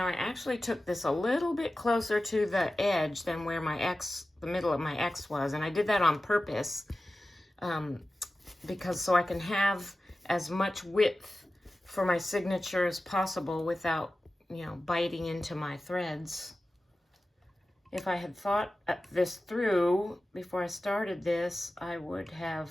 I actually took this a little bit closer to the edge than where my X, the middle of my X was, and I did that on purpose, because so I can have as much width for my signature as possible without, you know, biting into my threads. If I had thought this through before I started this, I would have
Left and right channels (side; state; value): both; normal; correlation 0.95